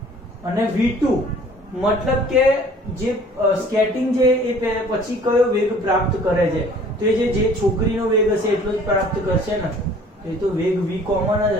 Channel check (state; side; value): normal; both; correlation 0.52